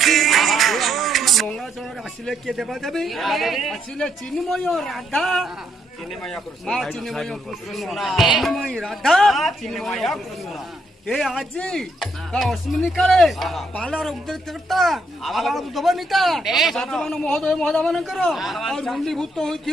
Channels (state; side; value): normal; both; correlation 0.75